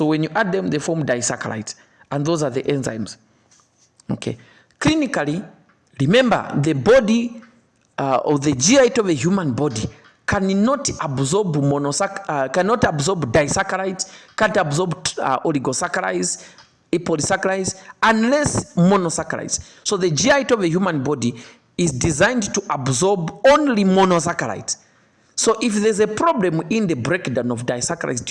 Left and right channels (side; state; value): both; identical; correlation 1.00